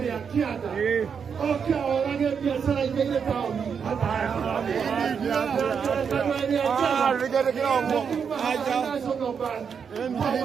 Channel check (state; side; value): quieter; left; 6.7 dB